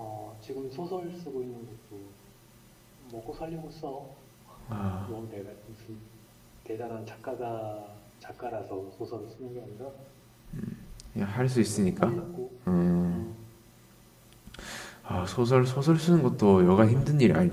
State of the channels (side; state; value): both; identical; correlation 1.00